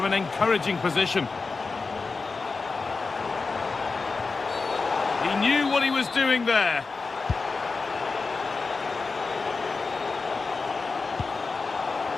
an encouraging position. He knew what he was doing there.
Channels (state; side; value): quieter; right; 4.2 dB